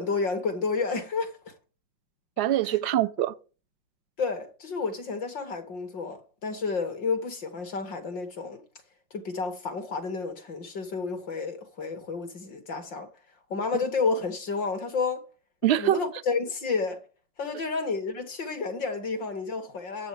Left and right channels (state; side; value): late; right; 5.6 ms